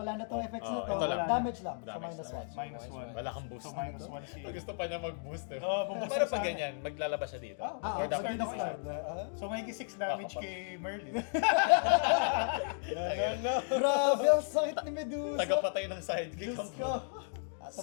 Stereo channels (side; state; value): right; silent; digital silence